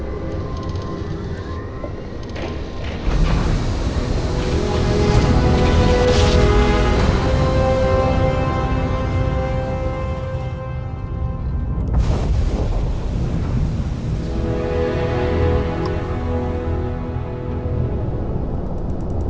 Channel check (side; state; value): both; identical; correlation 1.00